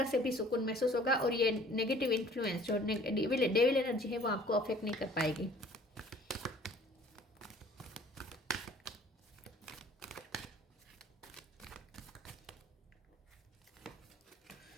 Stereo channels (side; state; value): both; normal; correlation 0.53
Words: से भी सुकून महसूस होगा और ये नेगेटिव इन्फ्लुएंस जो डेविल एनर्जी है वो आपको अफेक्ट नहीं कर पाएगी।